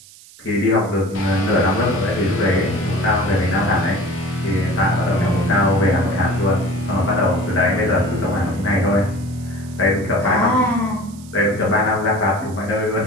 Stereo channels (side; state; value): right; noise; hiss, 22 dB below the sound